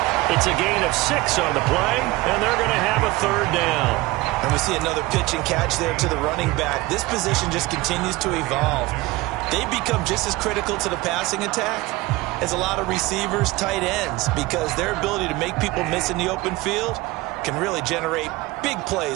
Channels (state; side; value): quieter; left; 20.4 dB